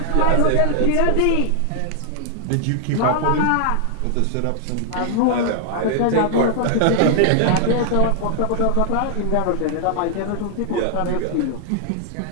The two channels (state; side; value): different; both; correlation 0.00